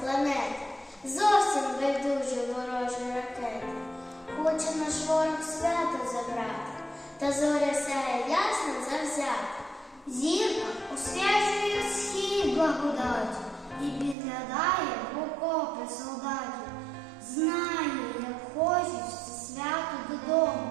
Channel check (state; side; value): drops out; left; at 14.2 s